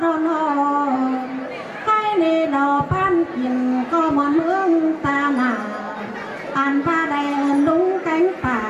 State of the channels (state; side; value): identical; both; correlation 1.00